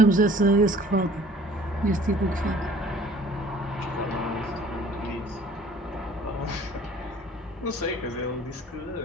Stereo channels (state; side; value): normal; both; correlation 0.52